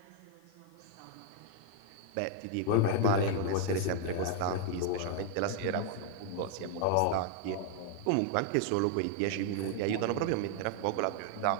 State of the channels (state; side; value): different; both; correlation 0.00